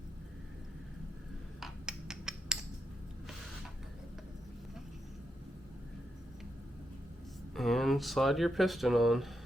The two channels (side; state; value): both; normal; correlation 0.84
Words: And slide your piston on.